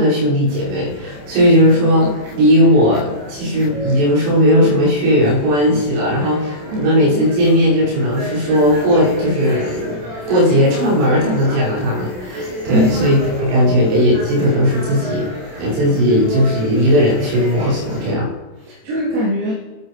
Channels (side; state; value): left; late; 27 ms